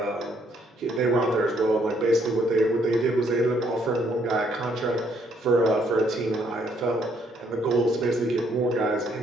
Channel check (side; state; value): both; normal; correlation 0.69